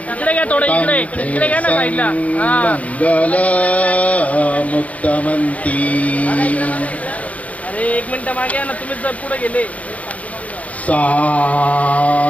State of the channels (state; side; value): late; right; 0.068 ms